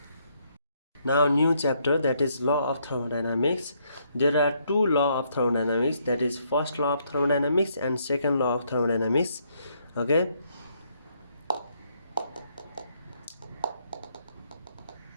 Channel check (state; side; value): inverted; both; correlation -0.72